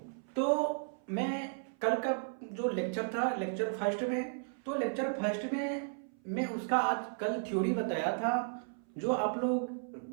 तो मैं कल का जो लेक्चर था, लेक्चर फर्स्ट में, तो लेक्चर फर्स्ट में मैं उसका आज कल थ्योरी बताया था, जो आप लोग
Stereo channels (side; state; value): left; silent; 55 dB below the other